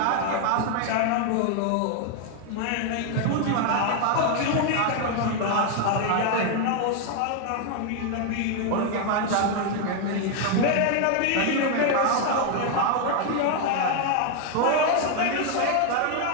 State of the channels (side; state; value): both; different; correlation 0.00